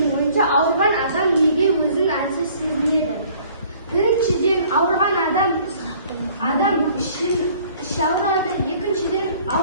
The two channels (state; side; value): inverted; both; correlation -0.55